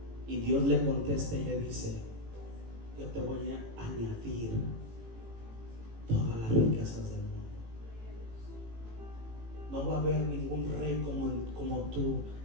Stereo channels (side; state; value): left; late; 18 ms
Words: Y Dios le contesta y le dice, yo te voy a añadir todas las riquezas del mundo. No va a haber ningún rey como tú